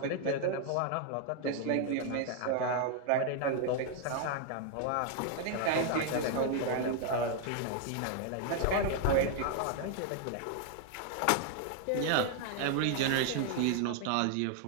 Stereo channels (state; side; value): different; both; correlation 0.00